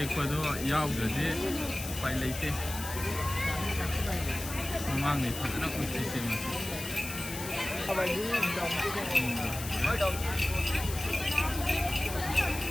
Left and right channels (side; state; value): left; noise; hiss, 9 dB below the sound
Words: Ecuador yaw gade pai leite. Mamang ni fazna kuch se mas.